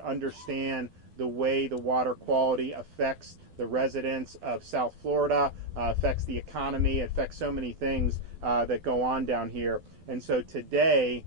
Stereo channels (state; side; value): late; left; 12 ms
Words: the way the water quality affects the residents of South Florida, affects the economy, affects so many things that go on down here. And so today,